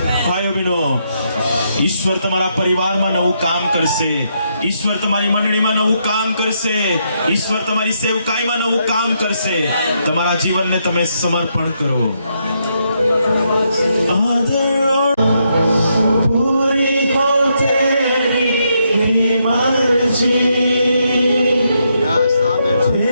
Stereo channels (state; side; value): inverted; both; correlation -0.78